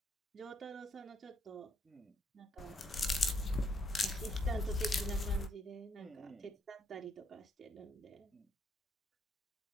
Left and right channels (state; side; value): normal; both; correlation 0.73